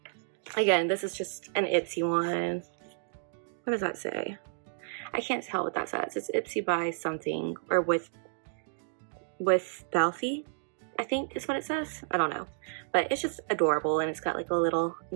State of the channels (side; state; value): left; silent; digital silence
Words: again, this is just an Ipsy one. What does that say? I can't tell what that says. It's Ipsy by something, or with Belfie, I think is what it says. I don't know, but it's just adorable, and it's got like a little